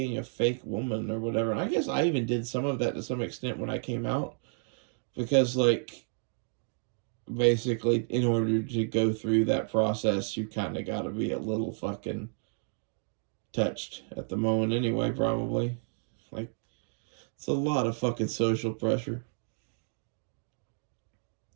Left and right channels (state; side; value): silent; left; 57 dB below the other